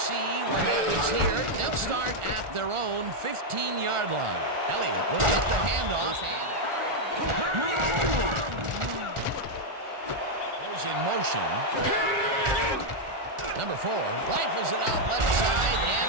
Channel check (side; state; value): left; late; 1.4 ms